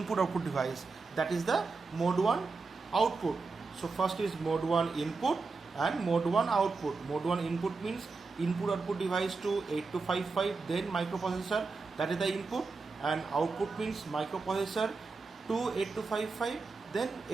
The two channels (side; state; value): left; quieter; 4.2 dB